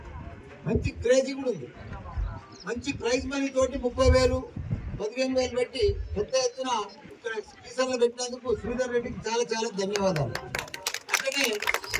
మంచి క్రేజీ కూడా ఉంది. మంచి ప్రైజ్ మనీ తోటి 30,000 15,000 పెట్టి పెద్ద ఎత్తున ఇక్కడ కీసర్లో పెట్టినందుకు శ్రీధర్ రెడ్డికి చాలా చాలా ధన్యవాదాలు. అట్లనే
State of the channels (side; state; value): both; identical; correlation 1.00